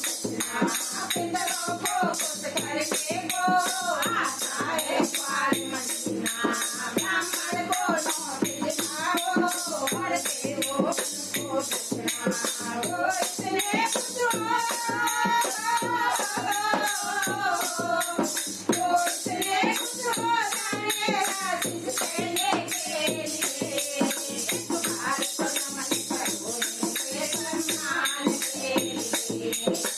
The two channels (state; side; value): identical; both; correlation 1.00